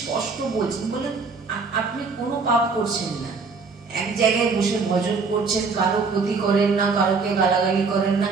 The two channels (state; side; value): quieter; left; 4.6 dB